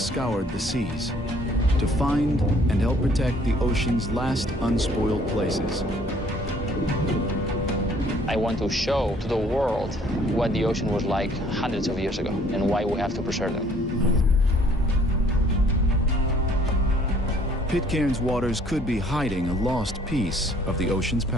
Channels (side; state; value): both; normal; correlation 0.59